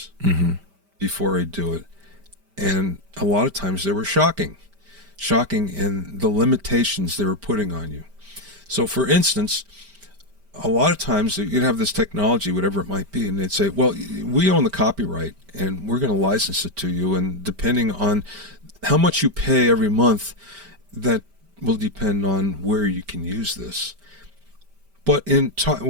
before I do it. And a lot of times they were shocking in the limitations they were putting on you. So for instance, a lot of times you'd have this technology, whatever it might be, and they'd say, well, we own the copyright and we're going to license it to you. And depending on how much you pay every month, that will depend on where you can use this. But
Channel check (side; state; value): left; late; 5.1 ms